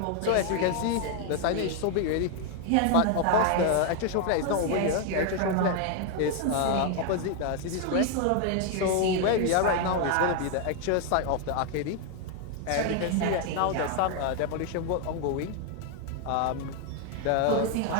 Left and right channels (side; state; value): both; different; correlation 0.01